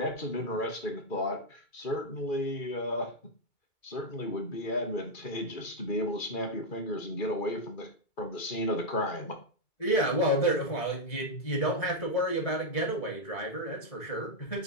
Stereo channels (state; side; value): late; right; 2.2 ms